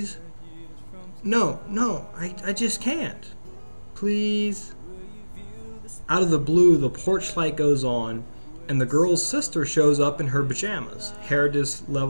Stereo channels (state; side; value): inverted; both; correlation -1.00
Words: No, I just can't. Please." Out of the blue, the porch light goes on, and the girl's sister shows up in her pajamas, hair